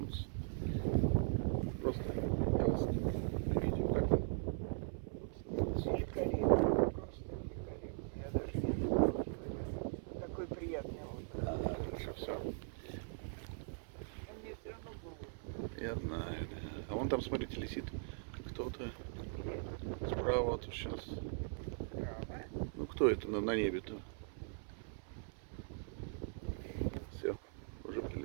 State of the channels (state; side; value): silent; left; 51 dB below the other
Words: Просто я вас сниму. Видите, как вы? Великолепно, просто великолепно. Я даже не знаю. Такой приятный отдых. Хорошо, все. А мне все равно было. Я знаю, да. А вон там, смотрите, летит кто-то справа вот сейчас. Право. Ну кто это на небе-то? Все, уже